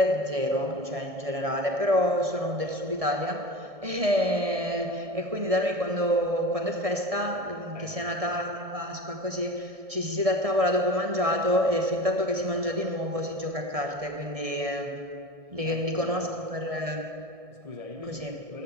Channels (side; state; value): left; late; 1.6 ms